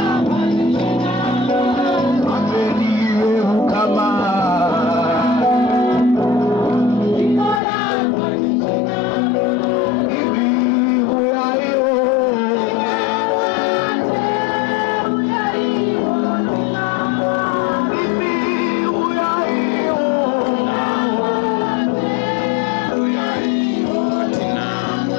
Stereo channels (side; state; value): right; drops out; at 7.6 s